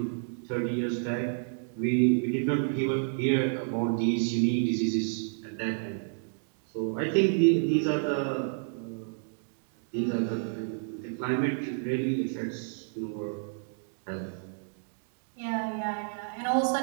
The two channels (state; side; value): silent; left; digital silence